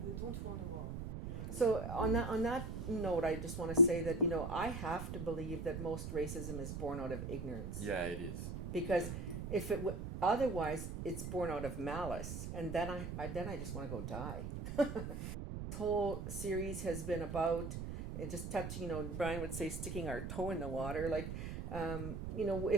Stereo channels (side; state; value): right; noise; rumble, 5 dB below the sound